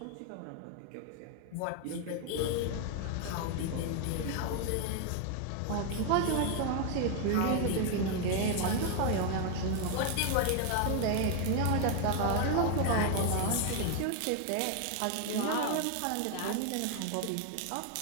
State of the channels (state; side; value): different; both; correlation 0.01